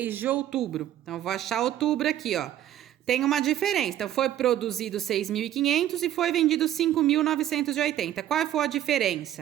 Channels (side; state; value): left; quieter; 11.9 dB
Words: de outubro? Então, eu vou achar outubro aqui, ó. Tem uma diferença. Então, foi produzido 6.500 e foi vendido 5.980. Qual foi a